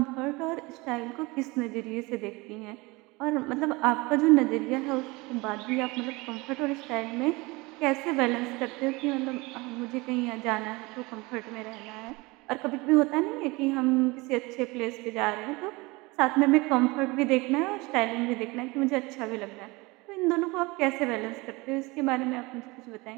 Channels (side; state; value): left; quieter; 24.0 dB